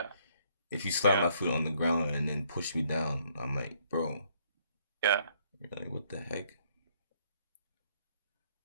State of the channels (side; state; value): both; inverted; correlation -0.67